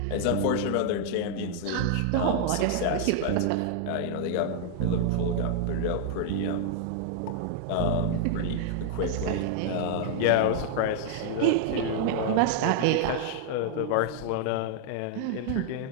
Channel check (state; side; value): different; both; correlation -0.01